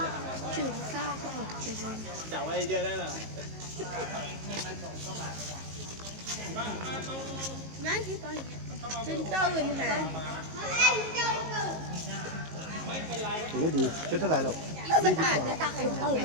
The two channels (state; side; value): late; left; 19 ms